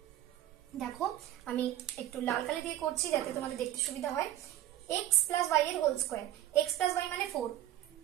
দেখো আমি একটু লাল কালি দিয়ে করছি যাতে তোমাদের দেখতে সুবিধা হয়। x + y এর হোল স্কয়ার, x + y মানে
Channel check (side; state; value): left; quieter; 13.0 dB